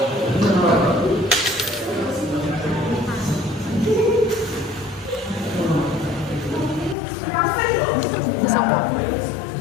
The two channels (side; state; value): right; drops out; at 7.0 s